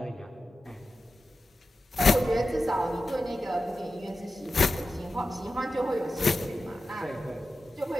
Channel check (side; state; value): both; normal; correlation 0.93